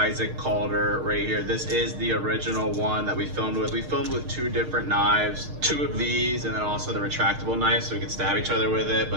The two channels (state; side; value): late; left; 6.5 ms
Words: Calder right here. This is the original one that we filmed with. We filmed with two different knives, two of these, and then also the retractable knife so we could stab each other with it.